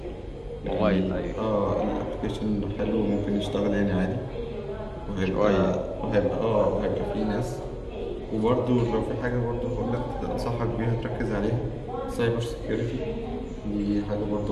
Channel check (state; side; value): identical; both; correlation 1.00